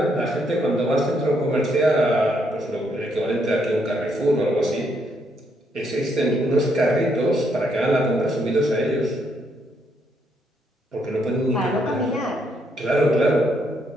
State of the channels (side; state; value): both; normal; correlation 0.74